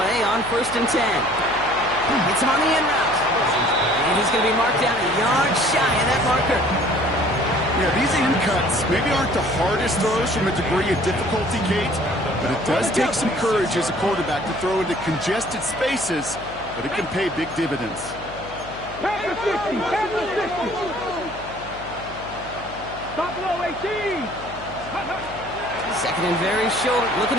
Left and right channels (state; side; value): noise; left; hum, 15 dB below the sound